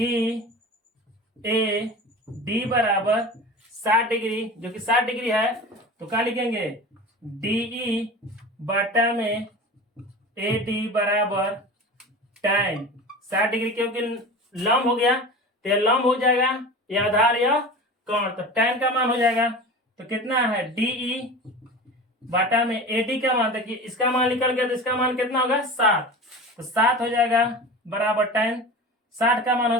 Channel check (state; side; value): normal; both; correlation 0.33